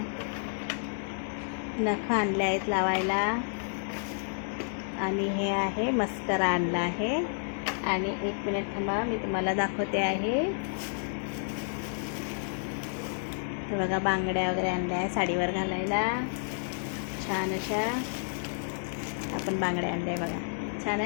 नखं आणले आहेत लावायला. आणि हे आहे मस्करा आणला आहे. आणि एक मिनिट थांबा, मी तुम्हाला दाखवते आहे. हे बघा बांगड्या वगैरे आणल्या आहे साडीवर घालायला, छान अशा आपण बांगड्या आणल्या आहे बघा, छान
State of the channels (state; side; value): silent; right; digital silence